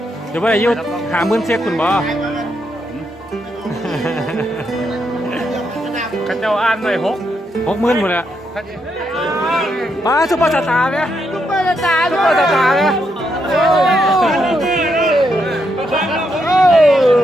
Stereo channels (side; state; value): both; normal; correlation 0.79